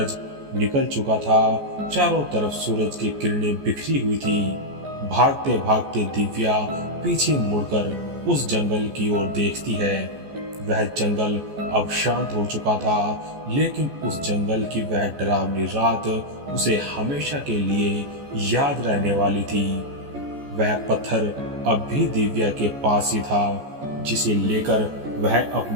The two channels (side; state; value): left; late; 14 ms